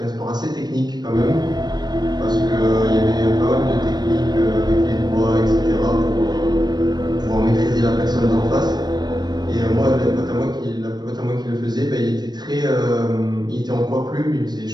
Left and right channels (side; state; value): left; late; 0.20 ms